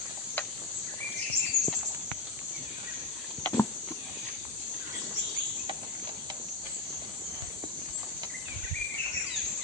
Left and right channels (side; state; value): right; quieter; 3.2 dB